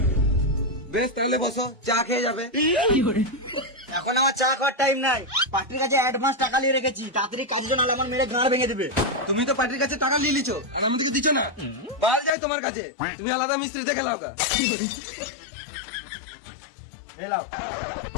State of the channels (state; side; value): drops out; right; at 12.3 s